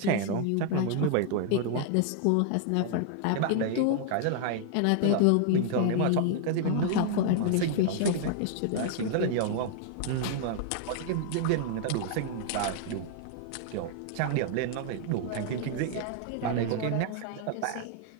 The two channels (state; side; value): different; both; correlation 0.00